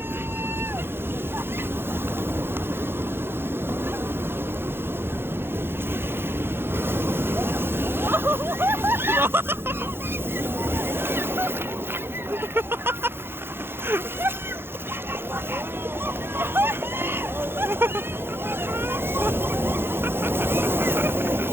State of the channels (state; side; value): late; left; 0.11 ms